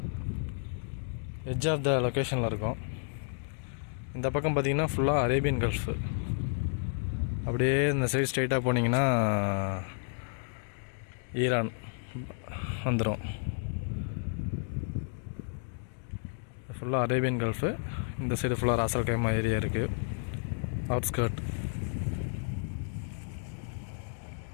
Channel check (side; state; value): right; silent; digital silence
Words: எட்ஜ் ஆஃப் த லொக்கேஷனில் இருக்கும். இந்த பக்கம் பார்த்திங்கன்னா ஃபுல்லாக அரேபியன் கல்ஃபு. அப்படியே இந்த சைடு ஸ்ட்ரைட்டாக போனீங்கன்னா ஈரான் வந்துடும். ஃபுல்லாக அரேபியன் கல்ஃபு. இந்த சைடு ஃபுல்லாக ராசல் கைமா ஏரியா இருக்குது, அவுட்ஸ்கர்ட்.